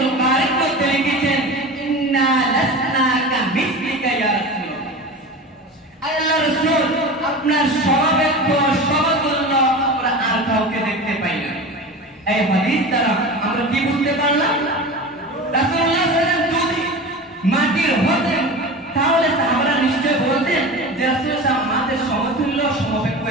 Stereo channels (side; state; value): both; normal; correlation 0.31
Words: কারির মধ্যে লিখেছেন ইন্না লাসনা কা মিসলিকা ইয়া রাসূলুল্লাহ। আল্লাহর রাসূল আপনার সমবেত সমতুল্য আমরা আর কাউকে দেখতে পাই না। এই হাদিস দ্বারা আমরা কি বুঝতে পারলাম? রাসূলুল্লাহ সাল্লাল্লাহু আলাইহি ওয়াসাল্লাম যদি মাটির হতেন তাহলে সাহাবারা নিশ্চয় বলতেন যে রাসূলুল্লাহ সাল্লাল্লাহু আলাইহি ওয়াসাল্লাম সমতুল্য সমবেত